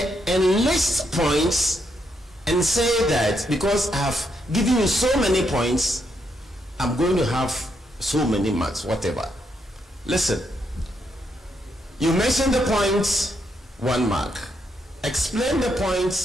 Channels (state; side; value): normal; both; correlation 0.78